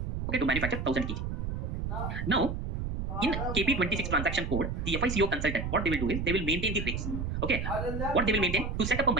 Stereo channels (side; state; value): right; noise; rumble, 3 dB below the sound